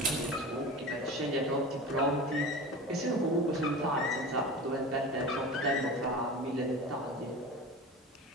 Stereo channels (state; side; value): normal; both; correlation 0.32